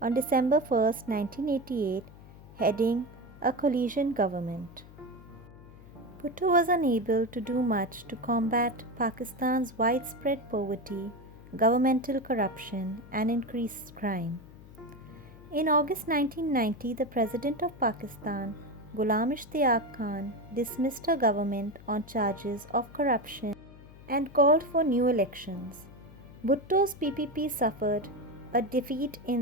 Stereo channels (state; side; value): noise; left; hum, 20 dB below the sound